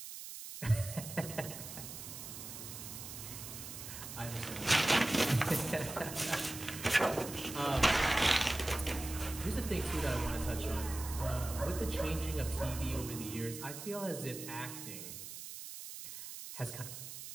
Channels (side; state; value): right; noise; hiss, 10 dB below the sound